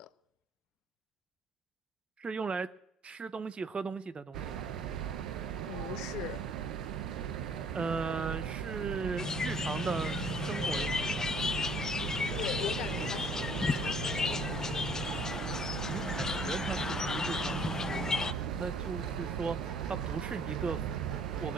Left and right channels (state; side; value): normal; both; correlation 0.56